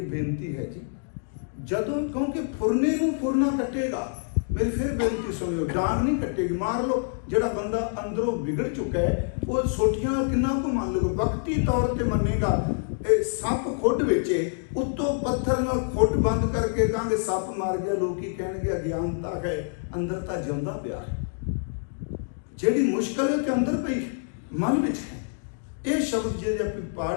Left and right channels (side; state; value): right; silent; digital silence